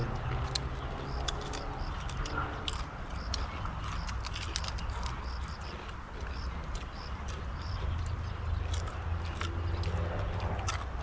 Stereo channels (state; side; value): identical; both; correlation 1.00